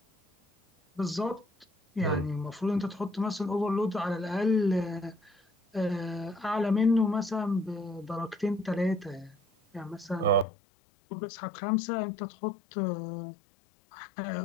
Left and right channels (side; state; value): right; drops out; at 10.5 s